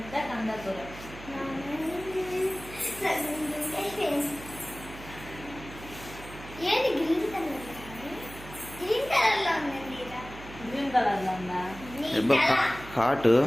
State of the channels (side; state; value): right; noise; hum, 15 dB below the sound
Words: ఏది green colour green colour లో ఉందండి. గ్రీన్ కలర్ లో ఉందా? హాట్